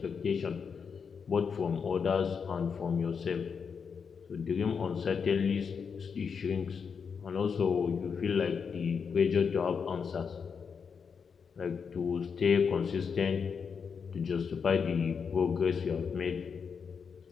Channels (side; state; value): right; quieter; 6.1 dB